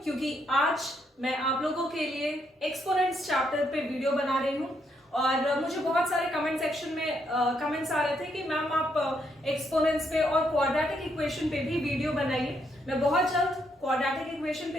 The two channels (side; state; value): both; normal; correlation 0.76